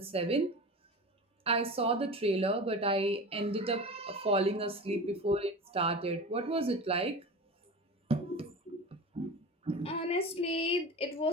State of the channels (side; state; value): both; normal; correlation 0.31